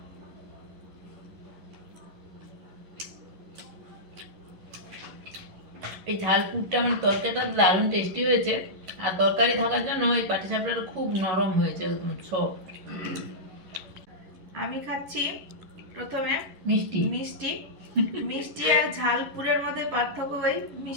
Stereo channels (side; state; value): left; late; 11 ms